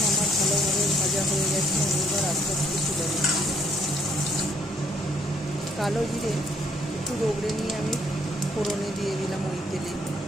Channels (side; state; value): both; normal; correlation 0.66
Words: আমার ভালোভাবে ভাজা হয়ে গেছে। আমি এবার আস্তে আস্তে তুলে নিচ্ছি। কালো জিরে একটু রগড়ে নিয়ে আমি ফোড়নে দিয়ে দিলাম ওই তেলে।